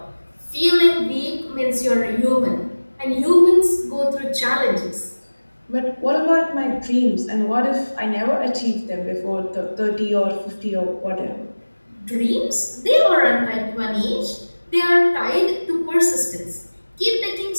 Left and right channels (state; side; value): inverted; both; correlation -1.00